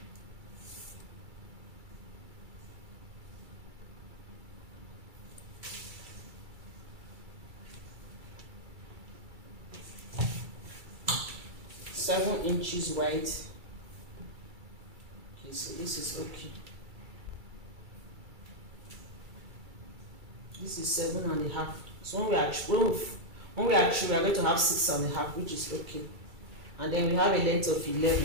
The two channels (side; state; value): left; late; 2.3 ms